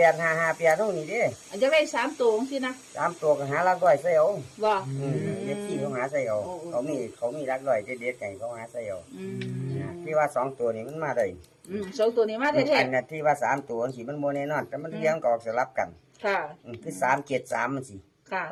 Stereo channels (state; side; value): identical; both; correlation 1.00